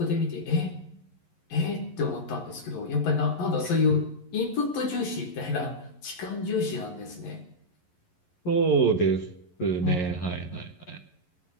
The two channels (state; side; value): late; right; 11 ms